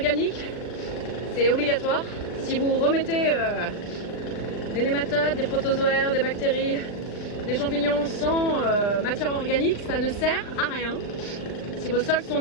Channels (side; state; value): right; late; 39 ms